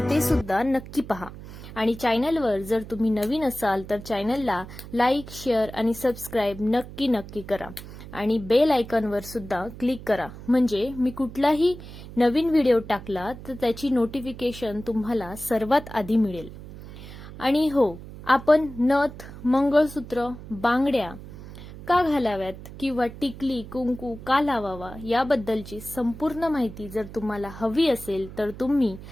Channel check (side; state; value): right; noise; hum, 14 dB below the sound